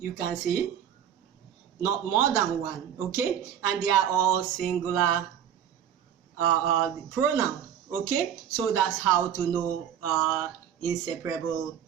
can see, not more than one. Okay, and they are all singular pronoun. Okay, so that's how to know inseparable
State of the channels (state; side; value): quieter; left; 9.5 dB